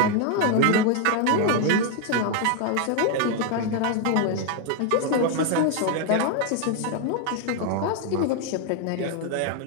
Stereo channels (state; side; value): different; both; correlation 0.00